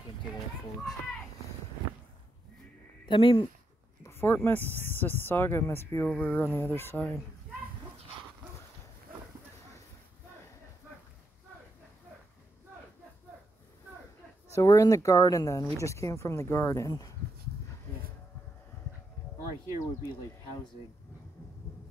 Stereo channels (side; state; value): both; normal; correlation 0.82